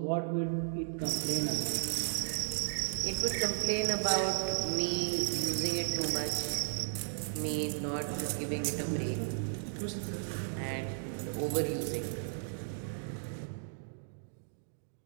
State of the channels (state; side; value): silent; left; digital silence